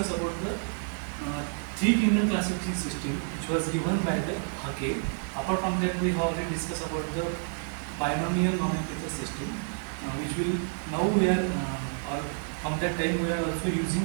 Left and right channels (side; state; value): left; silent; 58 dB below the other